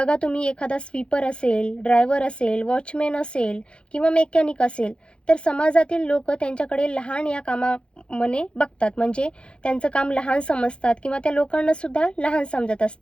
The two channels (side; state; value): right; late; 0.056 ms